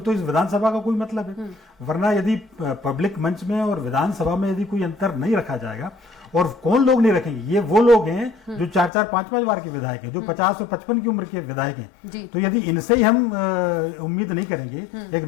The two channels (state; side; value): drops out; right; at 8.9 s